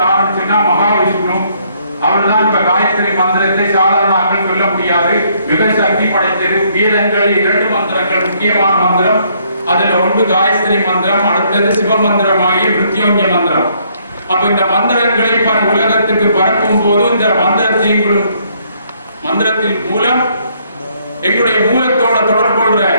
ஆரம்பிச்சுன்னா மகாவிஷ்ணு. அவர் தான் இப்ப காயத்ரி மந்திரத்தை சாதாரண ஆக்கள் சொல்ல முடியாது, மிக சக்தி படைத்தது. வீரங்களில் 2 மந்திரங்கள் முக்கியமான மந்திரம். அதுல ஒன்று காயத்ரி மந்திரம், அடுத்தது சிவ மந்திரமாகிய மிருத்யுஞ்சய மந்திரம். அப்ப இந்த மந்திரங்களை உலகத்துக்கு பரப்பும் போது இந்த மந்திரத்தின் மூலம் எங்களுடைய மூலத்தோட தொடர்பு கொள்ற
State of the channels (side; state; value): both; inverted; correlation -0.68